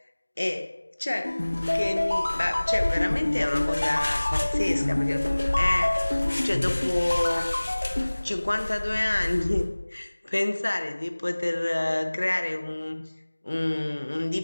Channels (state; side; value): inverted; both; correlation -1.00